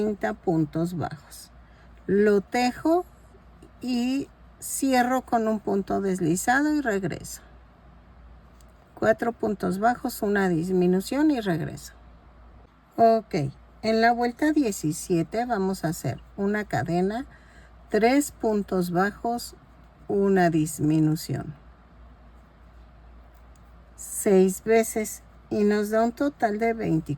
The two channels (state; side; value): identical; both; correlation 1.00